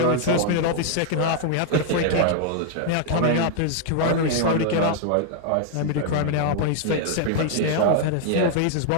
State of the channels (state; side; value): different; both; correlation 0.00